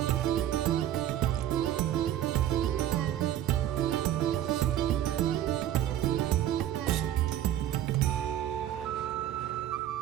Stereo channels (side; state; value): left; quieter; 11.7 dB